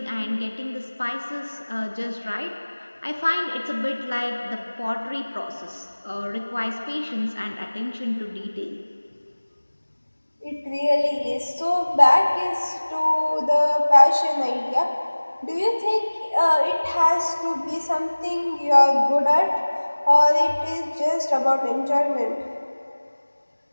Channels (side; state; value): both; inverted; correlation -1.00